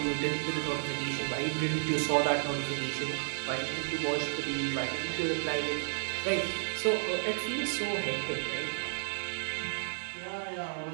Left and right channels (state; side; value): silent; left; digital silence